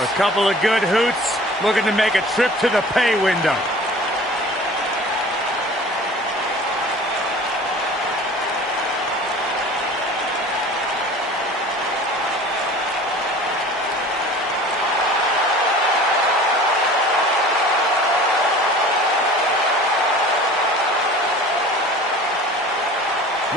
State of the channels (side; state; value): both; normal; correlation 0.43